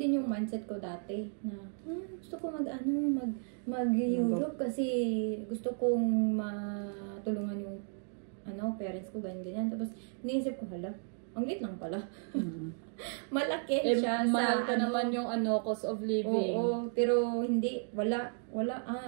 din yung mindset ko dati na gusto ko mag-Europe kasi gusto kong matulungan yung parents ko, ganyan. Tapos iniisip ko, hala, ang liit lang pala. Malaki siya mahal ka naman yung cost of living. Oo, pero hindi, wala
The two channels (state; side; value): silent; left; 55 dB below the other